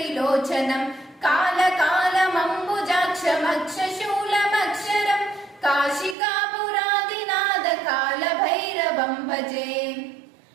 कालकालमम्बुजाक्षमक्षशूलमक्षरम् काशिकापुराधिनाथ कालभैरवम् भजे।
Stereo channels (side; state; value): left; drops out; at 6.2 s